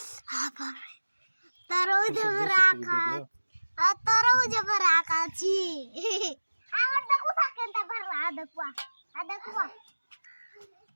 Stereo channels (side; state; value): both; inverted; correlation -1.00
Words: তারও যে রাখা আর তারও যে রাখা ছি আমার দেখো থাকেন তা ভালো দেখো